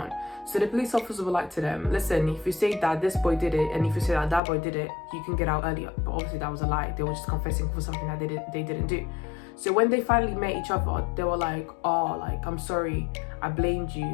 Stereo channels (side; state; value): right; drops out; at 4.4 s